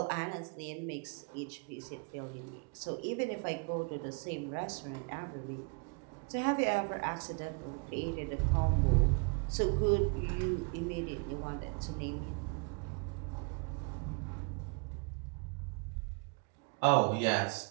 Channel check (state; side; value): quieter; left; 34.6 dB